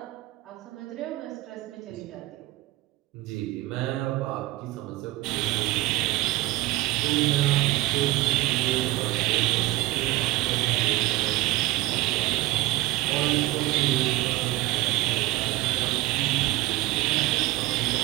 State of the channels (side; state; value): left; quieter; 18.1 dB